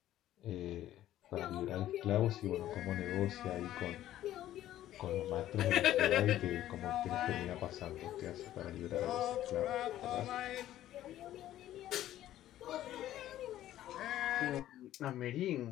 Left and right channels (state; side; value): quieter; right; 13.1 dB